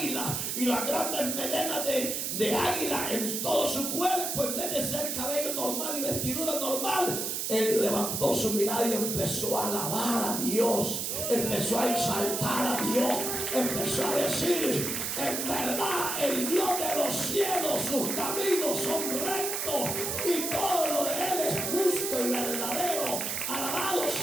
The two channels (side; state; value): right; noise; hiss, 2 dB below the sound